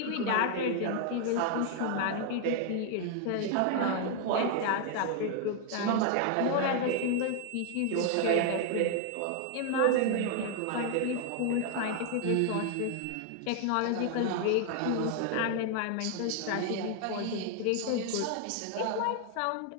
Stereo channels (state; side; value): different; both; correlation 0.00